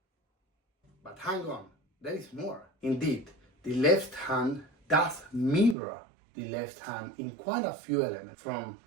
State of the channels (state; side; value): drops out; left; at 5.8 s